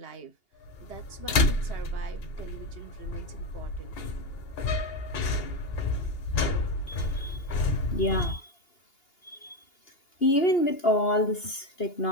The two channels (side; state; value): right; late; 2.8 ms